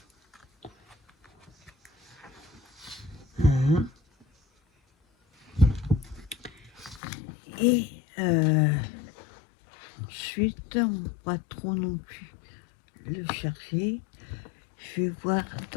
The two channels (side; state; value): right; drops out; at 7.0 s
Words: Hein. Et ensuite, on va pas trop non plus le chercher. Je vais voir